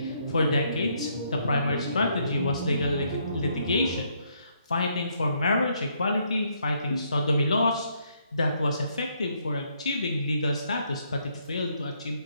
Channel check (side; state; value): both; inverted; correlation -0.72